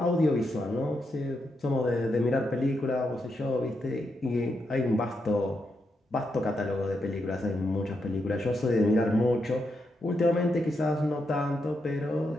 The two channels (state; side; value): normal; both; correlation 0.83